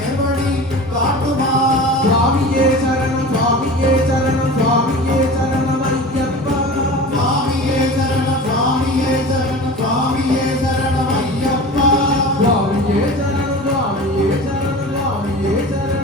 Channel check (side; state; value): both; normal; correlation 0.35